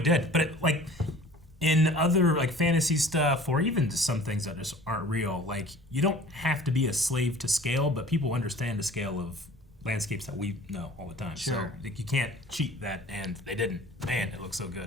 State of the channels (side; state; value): both; normal; correlation 0.46